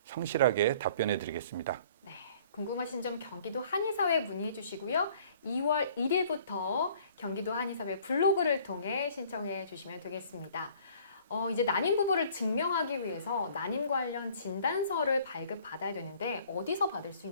성실하게 답변해 드리겠습니다. 네, 궁금하신 점 경기도 한의사회에 문의해 주시고요. 2월 1일부터 경기도 한의사회 블로그를 통해 신청해 주시면 되겠습니다. 이제 난임 부부를 증명하기 위해서 난임 관련 진단서를 발급받아야 되는데 어디서 받을 수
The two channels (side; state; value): both; inverted; correlation -0.54